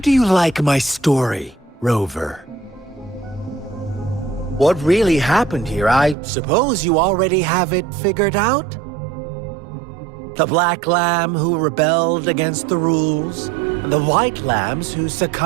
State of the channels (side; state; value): left; drops out; at 6.2 s